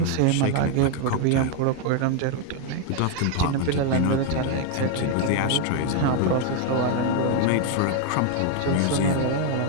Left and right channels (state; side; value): different; both; correlation 0.01